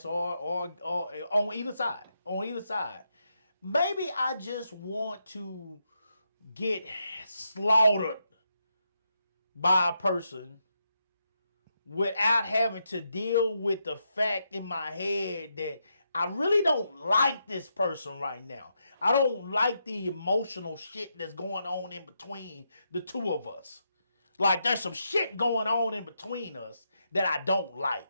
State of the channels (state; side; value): inverted; both; correlation -0.82